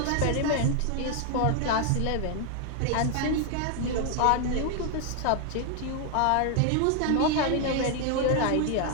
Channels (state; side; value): different; both; correlation 0.00